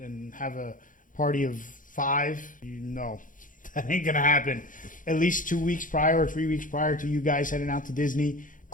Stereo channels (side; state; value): right; late; 0.38 ms